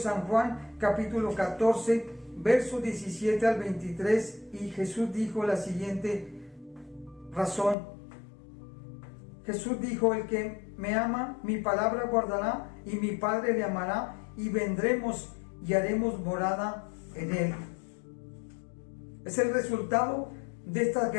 Juan, capítulo 14, verso 17 al 23. Y Jesús dijo la siguiente razón. Jesús dijo: el que me ama, mi palabra guardará, y mi Padre le amará, y vendremos y haremos morada en él. Es el resultado de estas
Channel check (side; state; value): right; drops out; at 7.8 s